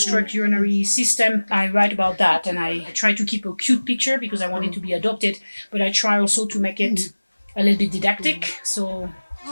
urinary system. I write about that and I try to keep a cute picture because I want it to be adopted, but I try also to make it a little bit didactic. So.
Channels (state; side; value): inverted; both; correlation -1.00